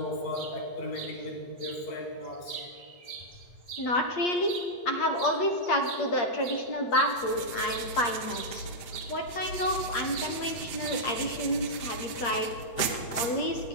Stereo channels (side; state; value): right; late; 7.9 ms